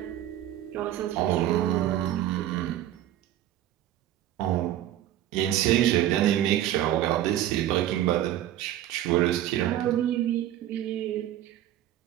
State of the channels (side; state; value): left; quieter; 12.7 dB